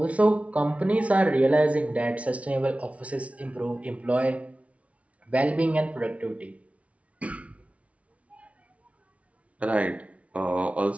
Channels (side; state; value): left; late; 0.064 ms